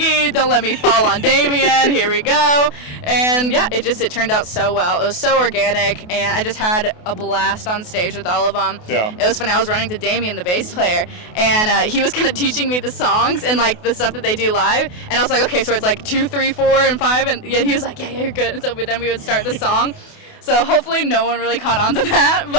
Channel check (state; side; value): late; right; 28 ms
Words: Don't let me fall on Damien. Here we go. And yeah, it turned out so well. It was so organic, and I just had a blast on stage with all of them. Yeah. It was funny. I was running to Damien, the bass player, and he was kind of teaching me the songs and like the stuff that they do live. And I was like, okay, so it's like 2, 3, 4, and 5. And yeah, he was like, yeah, you're good. And so then we would start the song. So hopefully no one really caught on to that,